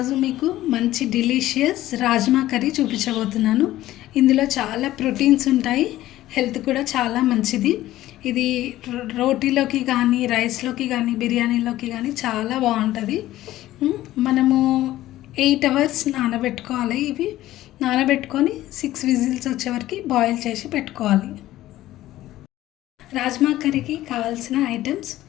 మీకు మంచి డిలీషియస్ రాజ్మా కర్రీ చూపించబోతున్నాను. ఇందులో చాలా ప్రోటీన్స్ ఉంటాయి, హెల్త్ కూడా చాలా మంచిది. ఇది రోటీలోకి కానీ, రైస్లోకి కానీ, బిర్యానీలోకి కానీ చాలా బాగుంటుంది. మనము 8 hours నానబెట్టుకోవాలి. ఇవి నానబెట్టుకొని 6 విజిల్స్ వచ్చే వరకు బాయిల్ చేసి పెట్టుకోవాలి. రాజ్మా కర్రీకి కావాల్సిన ఐటమ్స్:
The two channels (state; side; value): quieter; right; 15.0 dB